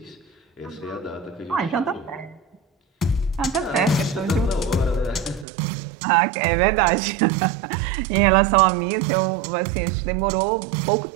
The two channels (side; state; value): left; drops out; at 5.5 s